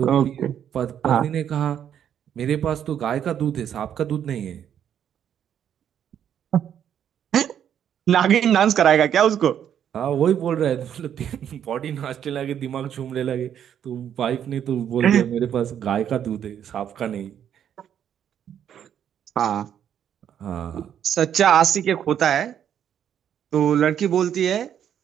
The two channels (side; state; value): left; quieter; 9.4 dB